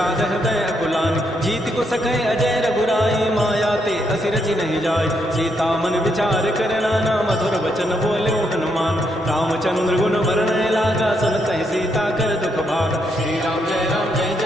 हृदय अकुलानी जीत को सकै अजय रघुराई माया ते असि रचि नहीं जाय सीता मन विचार कर नाना मधुर वचन बोल्यो हनुमान रामचंद्र गुण वर्णय लागा सुनत ही सीता कर दुख भागा श्री राम जय राम जय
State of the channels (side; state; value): both; normal; correlation 0.77